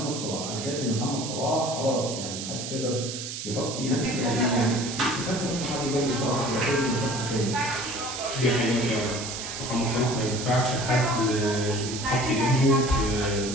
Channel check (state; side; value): noise; right; hiss, 7 dB below the sound